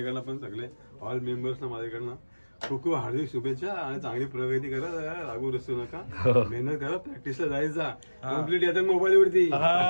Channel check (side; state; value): both; inverted; correlation -1.00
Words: पण सगळे ऑल मेंबर्सना माझ्याकडनं खूप खूप हार्दिक शुभेच्छा आणि चांगली प्रगती करा. लागू रसू नका, मेहनत करा, प्रॅक्टिसला जायचा. कम्प्लीट येतात मोबाईल वरती.